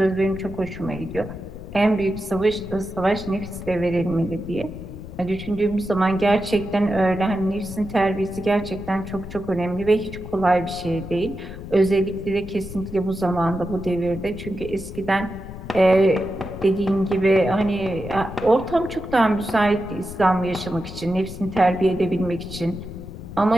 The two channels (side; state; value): left; noise; rumble, 12 dB below the sound